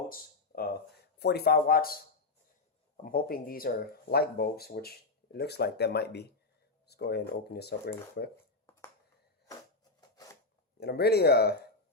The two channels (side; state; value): right; quieter; 3.5 dB